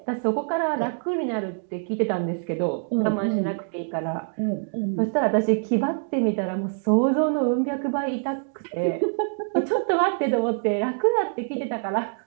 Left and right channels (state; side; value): silent; left; digital silence